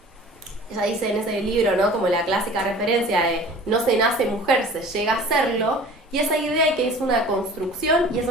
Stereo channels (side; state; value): both; normal; correlation 0.44